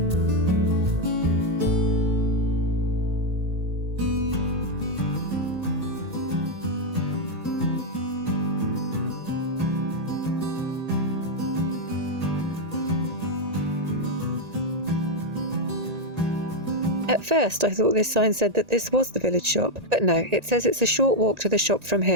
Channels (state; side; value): late; left; 1.9 ms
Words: At first I thought this sign said that this was the village shop, but no, it says it's a short walk to the shop from